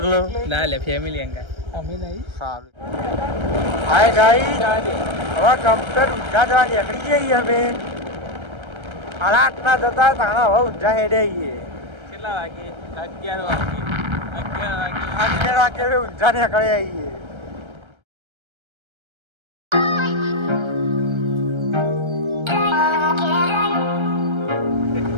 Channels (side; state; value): left; late; 1.3 ms